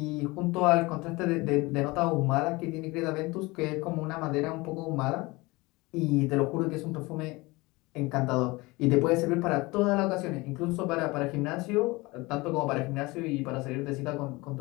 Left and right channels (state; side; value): quieter; right; 23.1 dB